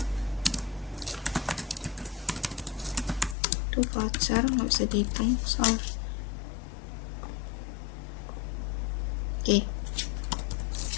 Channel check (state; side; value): drops out; right; at 3.4 s